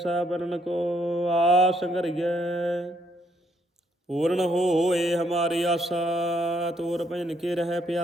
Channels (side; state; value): both; normal; correlation 0.71